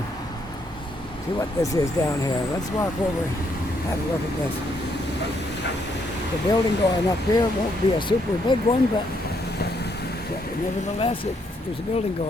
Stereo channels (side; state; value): both; normal; correlation 0.73